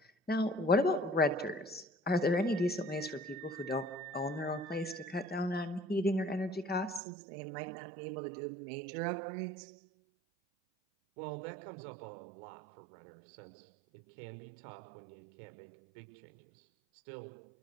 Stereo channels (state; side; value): drops out; left; at 7.0 s